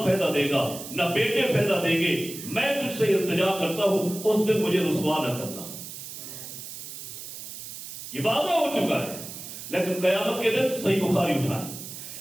فائدہ دے گا نہ بیٹے فائدہ دیں گے، میں تجھ سے التجا کرتا ہوں اس دن مجھے رسوا نہ کرنا۔ یہ وعدہ ہو چکا ہے، لیکن قیامت کے دن صحیح بخاری اٹھائیں،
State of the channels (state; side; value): noise; right; hiss, 11 dB below the sound